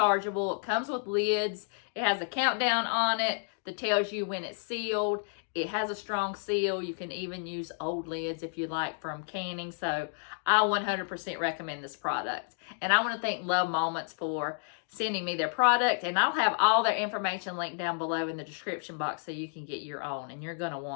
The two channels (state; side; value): silent; right; digital silence